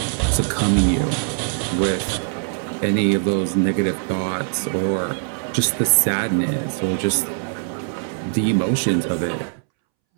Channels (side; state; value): left; silent; 65 dB below the other